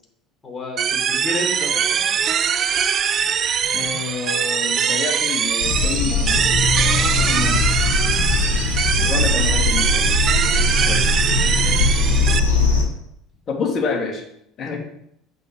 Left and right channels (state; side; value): normal; both; correlation 0.45